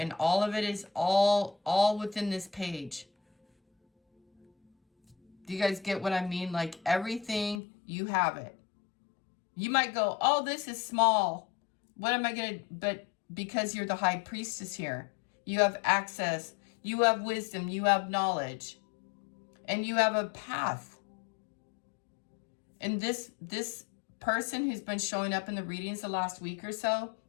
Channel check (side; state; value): right; drops out; at 7.6 s